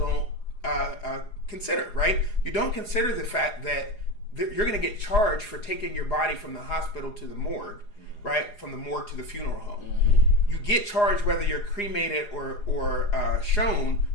consider, right? You don't consider the fact that you're going to get charged for taking your body from the hospital to the morgue, right? From the morgue to the funeral home. Mm-hmm. You get charged whether you're cremated or shown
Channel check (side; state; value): right; late; 4.8 ms